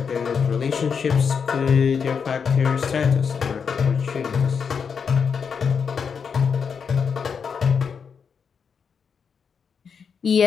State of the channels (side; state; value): right; quieter; 6.3 dB